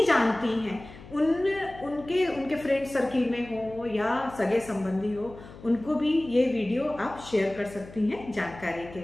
जानती हैं उनके फ्रेंड सर्किल में हो या सगे संबंधी हो, उनको भी ये वीडियो आप शेयर कर सकती हैं जानकारी के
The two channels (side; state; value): left; noise; hum, 18 dB below the sound